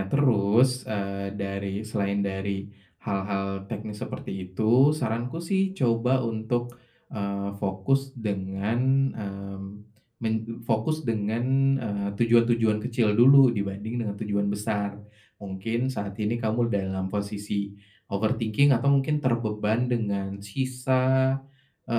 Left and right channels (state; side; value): identical; both; correlation 1.00